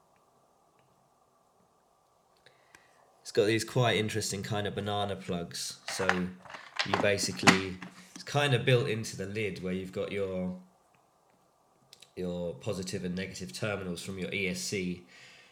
It's got these quite interesting kind of banana plugs. So you basically, it's kind of built into the lid, where you've got your positive and negative terminals from your ESC.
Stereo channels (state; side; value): identical; both; correlation 1.00